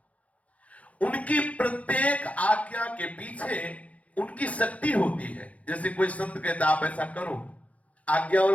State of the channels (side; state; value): right; late; 0.067 ms